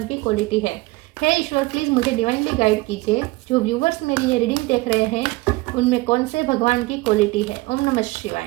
की क्वालिटी है। हे ईश्वर, प्लीज़ मुझे डिवाइनली गाइड कीजिए। जो व्यूवर्स मेरी ये रीडिंग देख रहे हैं उनमें कौन से भगवान की क्वालिटी है। ओम नमः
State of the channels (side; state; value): left; quieter; 21.9 dB